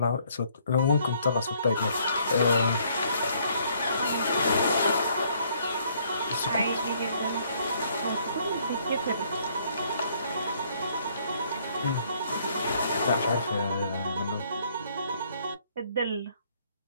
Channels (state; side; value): inverted; both; correlation -0.65